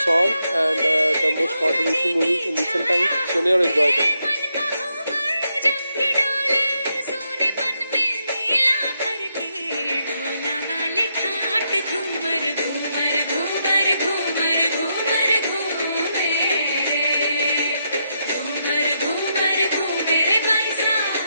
song and the most controversial movie in recent times. सुनिए और enjoy करें. जब भी डोले सोनेपन में मेला भर के ढोला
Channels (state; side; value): inverted; both; correlation -0.80